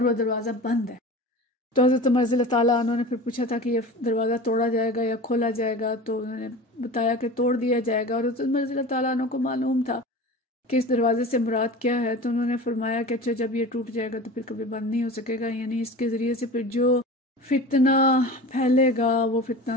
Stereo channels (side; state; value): both; normal; correlation 0.35